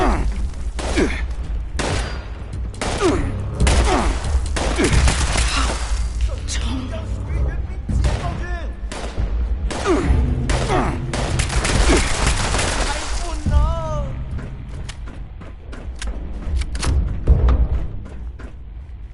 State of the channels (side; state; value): both; identical; correlation 1.00